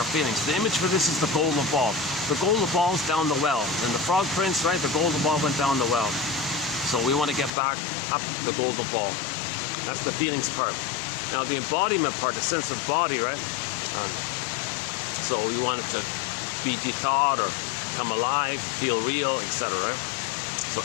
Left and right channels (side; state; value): right; drops out; at 7.5 s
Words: feelings. The image for this is the golden ball. The golden ball's down the well, and the frog prince, right? The golden ball went down the well. So we want to get back up the golden ball. That's the feelings part. Now the embodiment part, the sense of body, right? So we want it to be de-thought or come alive, feel real, etc. So